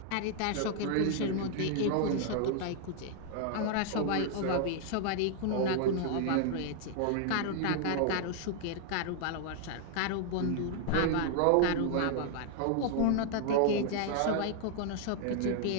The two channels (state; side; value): different; both; correlation 0.00